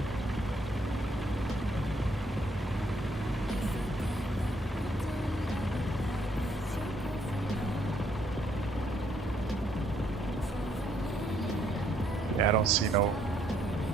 Yeah, I don't see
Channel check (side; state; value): both; normal; correlation 0.70